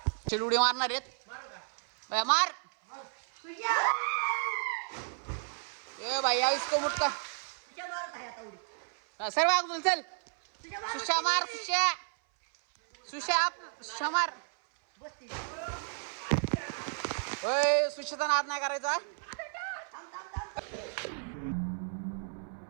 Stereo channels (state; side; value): silent; left; 56 dB below the other